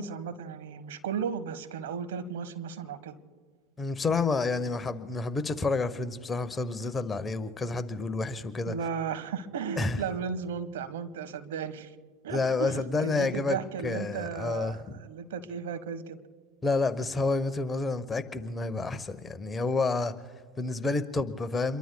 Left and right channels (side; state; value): both; normal; correlation 0.58